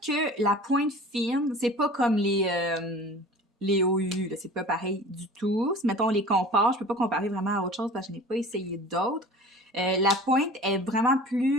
la pointe fine, c'est pas comme les OU, c'est pas pareil du tout. Si, mettons, on les compare, je peux pas comparer vraiment à autre chose parce que je n'ai pas essayé d'autres. La pointe est vraiment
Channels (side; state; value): both; normal; correlation 0.41